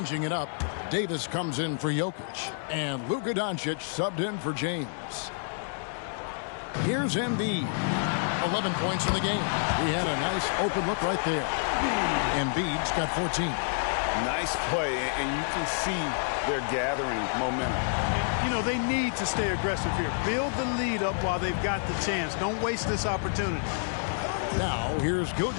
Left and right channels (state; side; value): silent; right; digital silence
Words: it up. Davis comes in for Jokic. And Luka Doncic subbed in for James. Here's Embiid. 11 points in the game. He had a nice open look right there. Embiid's got 14. Nice play, and you can see they're gathering momentum. And, you know, they need to stay aggressive here. Build the lead up while they've got the chance. Don't waste this opportunity. Now, here's